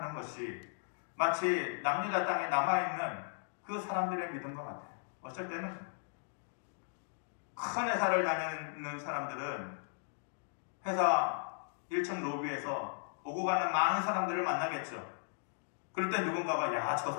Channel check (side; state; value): right; silent; digital silence